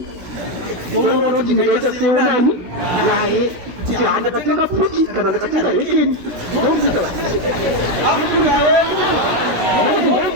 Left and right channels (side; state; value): left; late; 17 ms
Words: ndonoona kuti ndingaita seonani naye kuti handatenga puti kana ndatenga rekeni ndokuita Afrika yedu nokuti